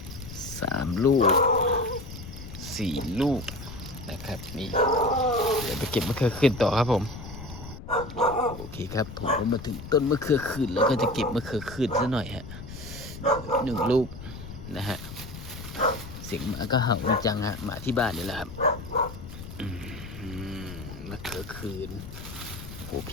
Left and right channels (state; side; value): noise; left; rumble, 12 dB below the sound